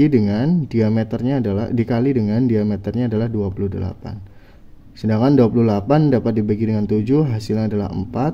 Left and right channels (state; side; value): identical; both; correlation 1.00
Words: dengan diameternya adalah dikali dengan diameternya adalah 28. Sedangkan 28 dapat dibagi dengan 7, hasilnya adalah 4,